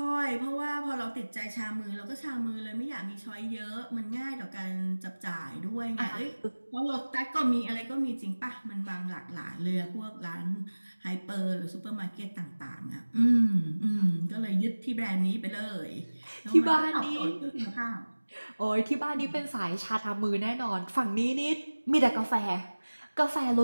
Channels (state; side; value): inverted; both; correlation -1.00